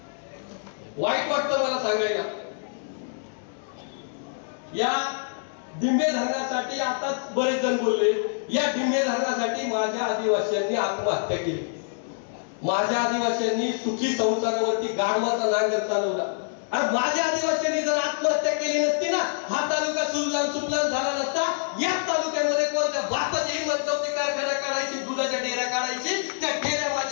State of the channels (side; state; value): right; silent; digital silence